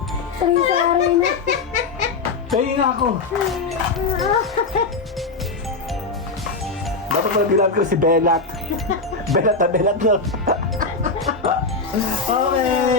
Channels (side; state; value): right; quieter; 4.1 dB